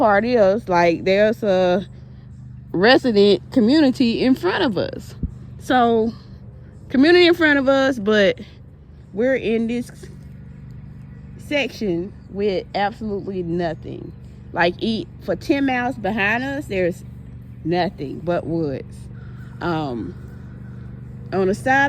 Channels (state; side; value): identical; both; correlation 1.00